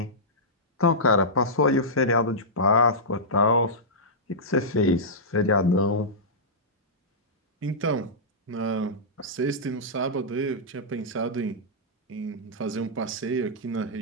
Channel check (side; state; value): both; normal; correlation -0.13